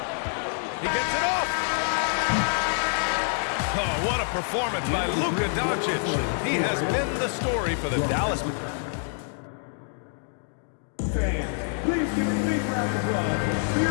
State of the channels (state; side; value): silent; right; digital silence